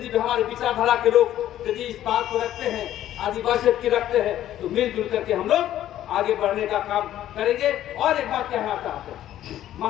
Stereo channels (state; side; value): quieter; right; 12.4 dB